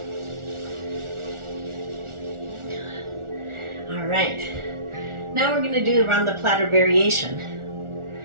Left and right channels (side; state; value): left; late; 1.4 ms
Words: All right. Now we're going to do around the platter variation.